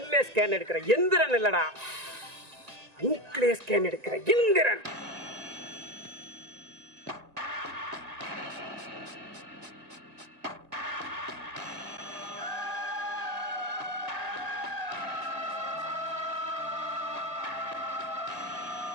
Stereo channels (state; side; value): late; left; 1.9 ms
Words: ஸ்கேன் எடுக்கிற எந்திரன் இல்லடா, மூக்கிலே ஸ்கேன் எடுக்கிற எந்திரன்.